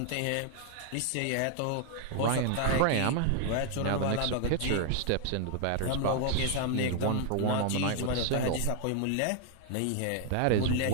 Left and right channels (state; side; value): different; both; correlation 0.00